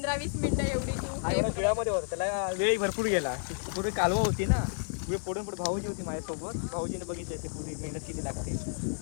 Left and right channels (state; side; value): silent; right; digital silence